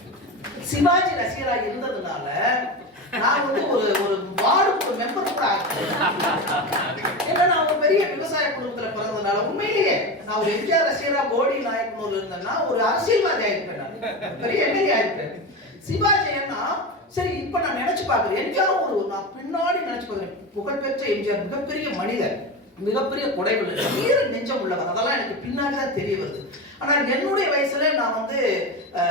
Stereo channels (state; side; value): normal; both; correlation 0.22